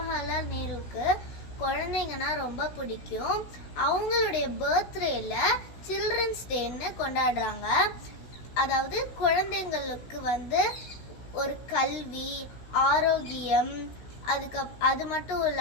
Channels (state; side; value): late; right; 16 ms